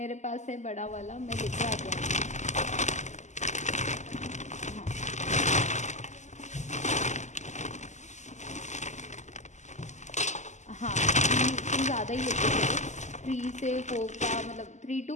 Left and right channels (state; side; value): late; right; 0.34 ms